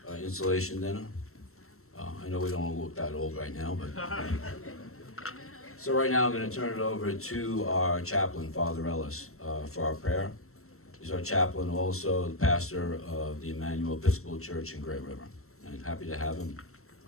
installation dinner. I know we don't look that old right now, but... So right now I'm going to turn it over to our chaplain, Father Ellis, for our prayer. He's our chaplain, also the pastor of the Emmanuel Episcopal Church in Great River. And happy to have him.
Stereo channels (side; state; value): right; late; 0.63 ms